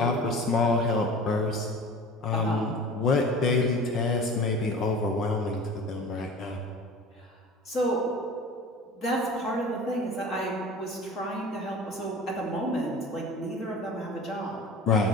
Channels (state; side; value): normal; both; correlation 0.38